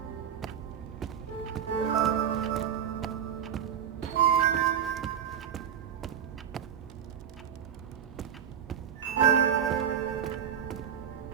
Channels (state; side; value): quieter; left; 8.6 dB